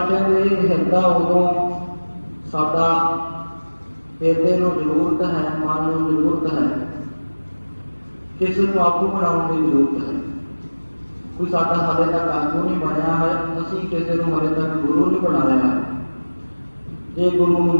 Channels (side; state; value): both; inverted; correlation -1.00